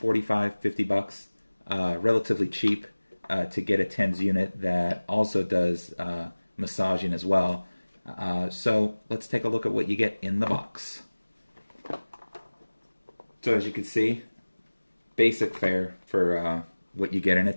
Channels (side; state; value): both; inverted; correlation -1.00